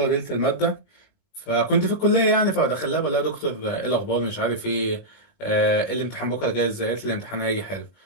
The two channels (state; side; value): late; right; 19 ms